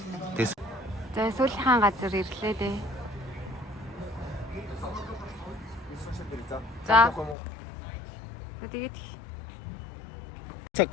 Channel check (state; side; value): drops out; right; at 7.4 s